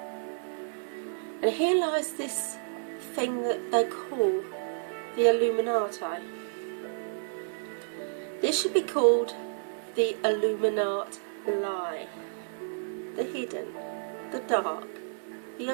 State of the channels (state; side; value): silent; left; digital silence